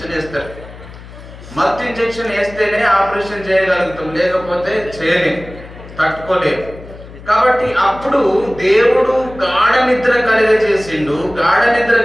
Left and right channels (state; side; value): noise; left; hum, 17 dB below the sound